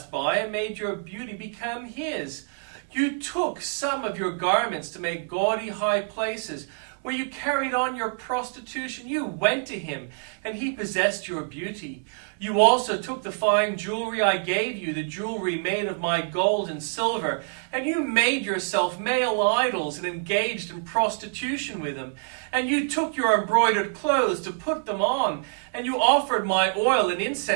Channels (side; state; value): left; silent; 61 dB below the other